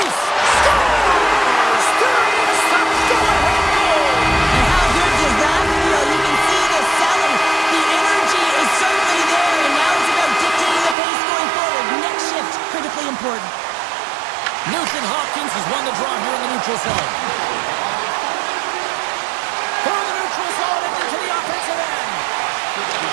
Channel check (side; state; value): left; drops out; at 11.0 s